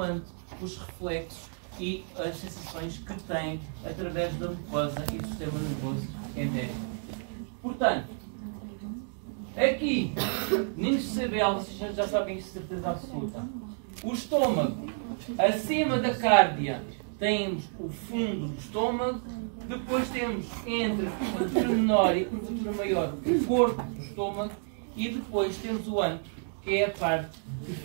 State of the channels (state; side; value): silent; left; 58 dB below the other